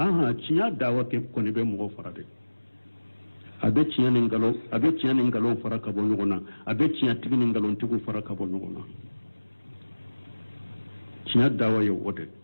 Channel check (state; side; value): inverted; both; correlation -1.00